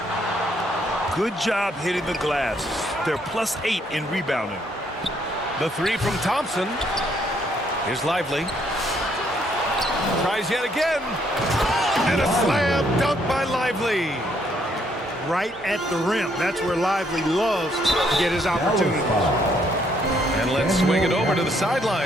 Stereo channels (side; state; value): both; normal; correlation 0.70